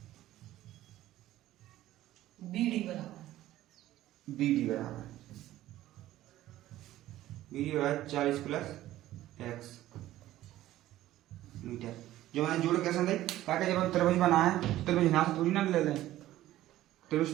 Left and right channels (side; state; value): left; quieter; 14.6 dB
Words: BD बराबर BD बराबर 40 प्लस x मीटर। जो मैंने जोड़ कैसे दी, ताकि जब हम त्रिभुज बनाए तो त्रिभुज यहाँ से थोड़ी ना ले लें,